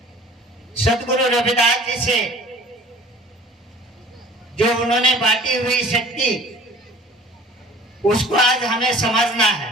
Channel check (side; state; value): both; normal; correlation 0.47